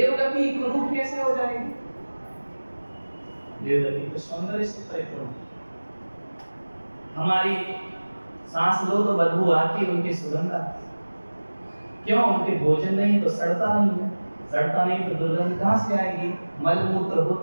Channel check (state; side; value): inverted; both; correlation -1.00